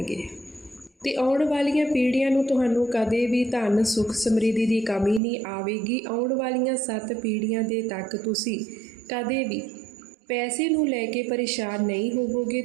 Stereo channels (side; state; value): left; drops out; at 5.2 s